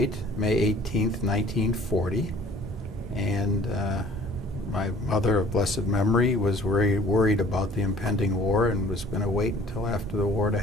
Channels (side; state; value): both; normal; correlation 0.52